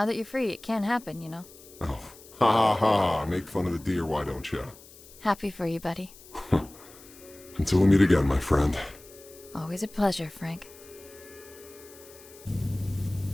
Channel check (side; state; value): left; noise; hiss, 21 dB below the sound